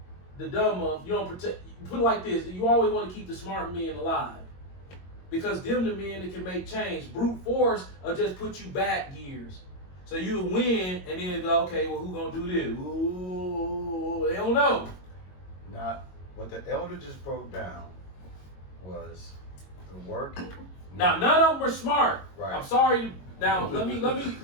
the dumb of you don't protect. Put it like this: you always want to keep the smart men alive because them the men that can make change. Brute force will just put you back years, so you win and then go, okay, well who gonna do this? Ooh, they don't know. Now, what the elder just broke down was the work. Now none of them are smart. Right. I'm sorry. Now let me.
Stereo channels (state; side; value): late; right; 22 ms